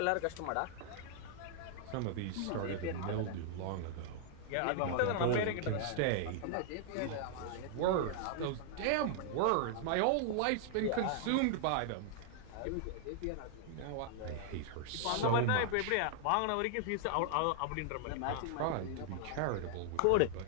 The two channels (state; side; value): different; both; correlation -0.01